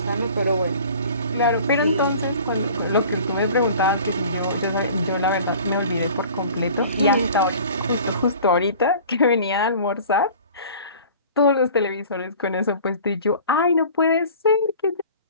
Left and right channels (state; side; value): inverted; both; correlation -0.45